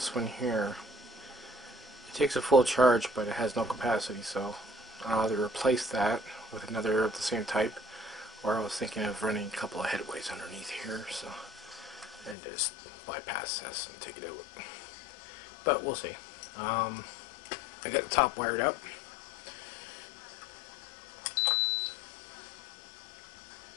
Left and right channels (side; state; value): right; drops out; at 12.4 s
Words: one here. It takes a full charge, but it has no capacity, so I'll either replace that with another of the same type, or I was thinking of running a couple of headways underneath here, so and just bypass this and take it out. But we'll see. I got the top wired up.